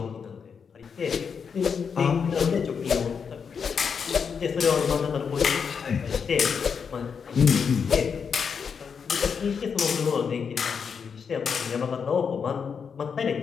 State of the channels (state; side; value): quieter; right; 6.3 dB